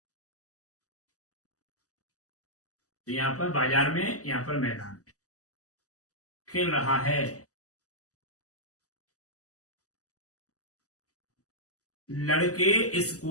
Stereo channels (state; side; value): late; right; 0.66 ms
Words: तो यहां पर बाजार में, यहां पर मैदान में खेल रहा है। लड़के